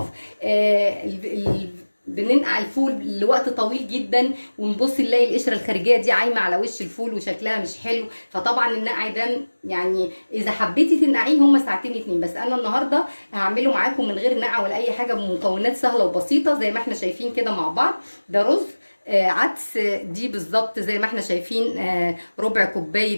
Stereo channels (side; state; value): both; inverted; correlation -1.00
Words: بننقع الفول لوقت طويل جدا ونبص نلاقي القشره الخارجيه دي عايمه على وش الفول وشكلها مش حلو. فطبعا النقع ده يعني اذا حبيتي تنقعيه هم ساعتين 2، بس انا النهارده هعمله معاكم من غير نقع ولا اي حاجه، بمكونات سهله وبسيطه زي ما احنا شايفين كده مع بعض. ده رز عدس، دي بالظبط زي ما احنا شايفين ربع